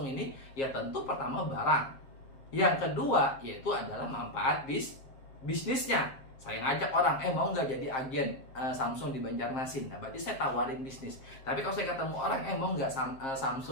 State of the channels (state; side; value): late; right; 7.5 ms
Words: ini? Ya tentu pertama barang. Yang kedua yaitu adalah manfaat bisnisnya. Saya ngajak orang, mau nggak jadi agen Samsung di Banjarmasin? Nah, berarti saya tawarin bisnis. Tapi kalau saya ketemu orang, mau nggak